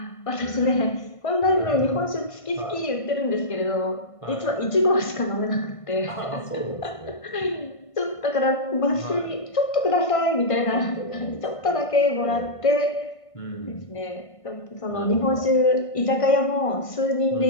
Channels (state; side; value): late; right; 1.5 ms